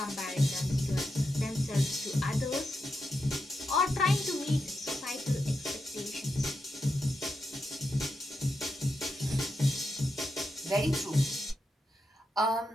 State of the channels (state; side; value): normal; both; correlation 0.86